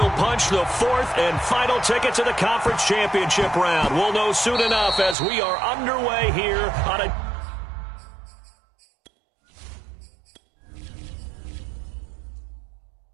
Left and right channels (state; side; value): drops out; left; at 5.2 s